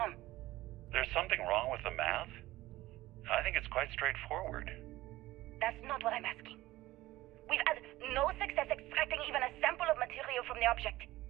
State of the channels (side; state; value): left; quieter; 17.1 dB